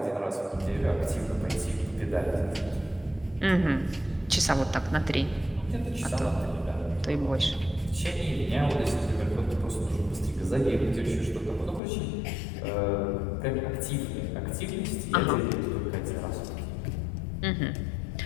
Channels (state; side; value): drops out; right; at 11.8 s